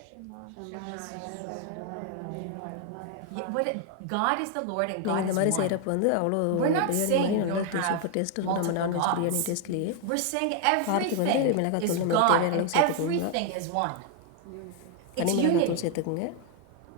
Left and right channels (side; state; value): both; different; correlation 0.01